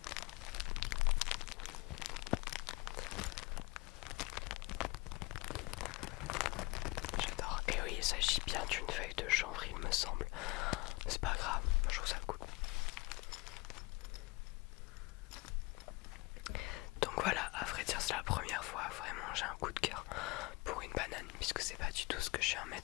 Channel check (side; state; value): right; quieter; 23.6 dB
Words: J'adore. Et oui, il s'agit bien d'une feuille de chanvre, il me semble. C'est pas grave, je trouve ça cool. Donc voilà, à vrai dire, c'est la première fois vraiment j'ai un coup de cœur pour une banane, puisque c'est pas du tout ce que je suis un